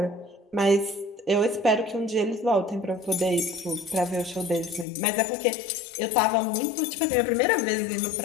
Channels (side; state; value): right; drops out; at 4.9 s